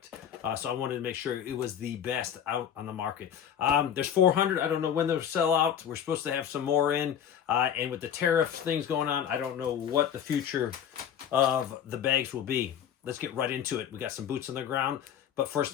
So I wanted to make sure it was the best out on the market. There's 400. I don't know when they'll sell out. We're supposed to have some more in. And with the tariff things going on, I don't know what the future of the bags will be. Let's get right into it. We got some boots on the ground. But first,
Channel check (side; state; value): right; quieter; 9.1 dB